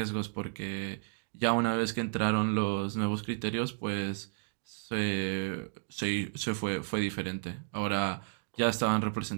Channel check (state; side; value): silent; left; digital silence